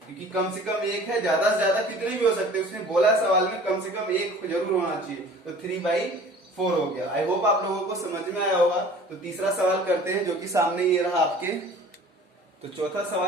क्योंकि कम से कम एक है, ज्यादा से ज्यादा कितने भी हो सकते हैं। उसने बोला सवाल में कम से कम एक जरूर होना चाहिए, तो 3/4 हो गया। आई होप आप लोगों को समझ में आया होगा। तो तीसरा सवाल करते हैं, जो कि सामने ये रहा आपके। तो तीसरा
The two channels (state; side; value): normal; both; correlation 0.46